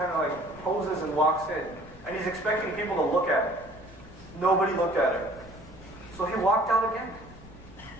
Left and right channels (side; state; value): left; noise; rumble, 19 dB below the sound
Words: of like poses and walks in. And he's expecting people to look at him. Nobody looked at him. So he walked out again,